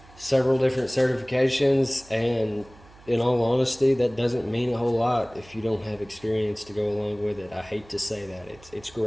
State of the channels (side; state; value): right; noise; hum, 24 dB below the sound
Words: several different certifications, and in all honesty, that doesn't mean a whole lot if you don't have experience to go along with it. I hate to say that. It's